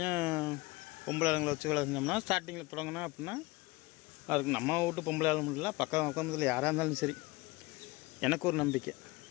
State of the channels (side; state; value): right; quieter; 22.5 dB